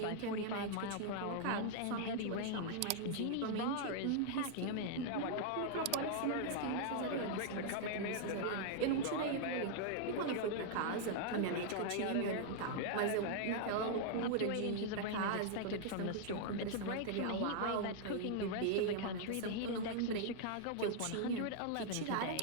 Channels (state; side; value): different; both; correlation -0.01